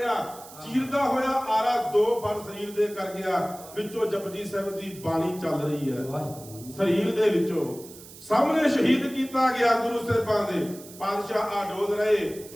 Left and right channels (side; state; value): right; noise; hiss, 18 dB below the sound